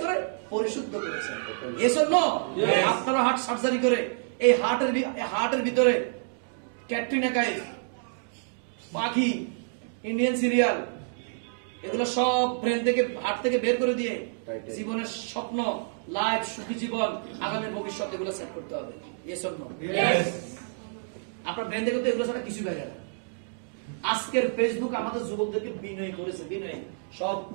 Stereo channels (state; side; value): silent; left; digital silence